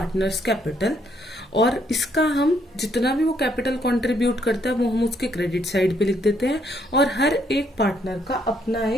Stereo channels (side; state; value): both; normal; correlation 0.71